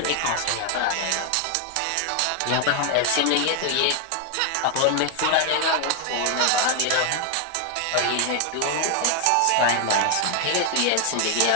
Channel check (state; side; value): different; both; correlation 0.00